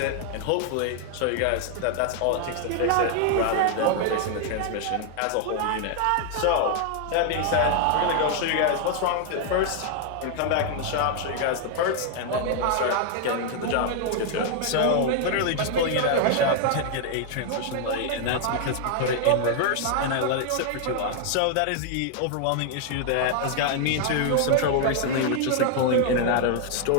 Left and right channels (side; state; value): both; different; correlation 0.00